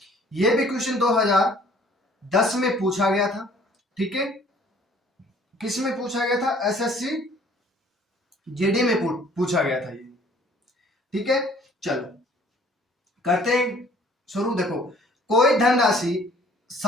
ये भी क्वेश्चन 2010 में पूछा गया था, ठीक है। किस में पूछा गया था? एसएससी जीडी में पूछा गया था ये, ठीक है। चलो करते हैं शुरू। देखो, कोई धनराशि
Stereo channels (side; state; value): both; normal; correlation 0.56